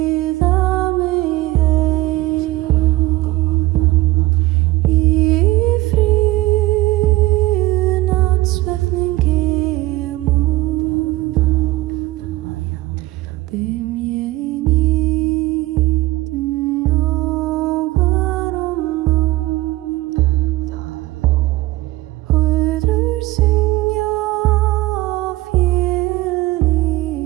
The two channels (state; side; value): quieter; left; 18.8 dB